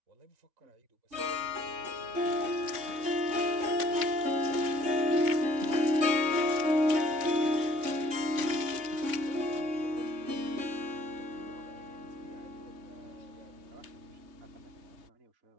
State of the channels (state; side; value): late; left; 3.5 ms